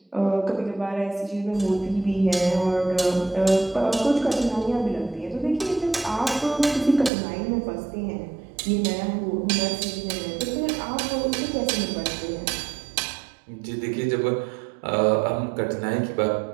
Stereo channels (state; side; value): drops out; left; at 7.1 s